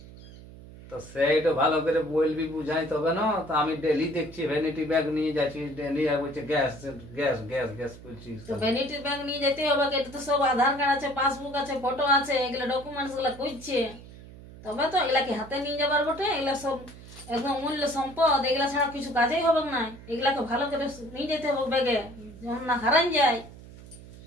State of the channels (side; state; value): right; noise; hum, 17 dB below the sound